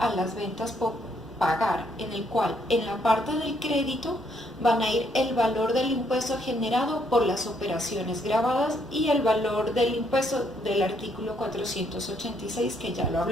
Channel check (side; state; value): both; normal; correlation 0.71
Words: las ventas por pagar, en el cual en la parte del crédito van a ir el valor del impuesto generado por las operaciones grabadas y el valor del impuesto del artículo 486 que ya lo